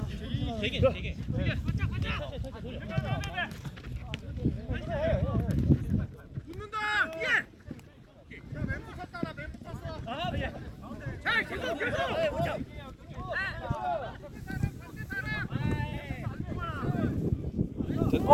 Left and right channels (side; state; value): both; identical; correlation 1.00